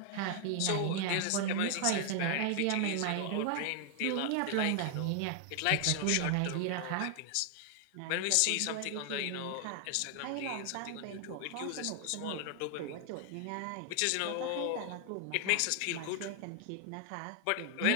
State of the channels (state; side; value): different; both; correlation 0.00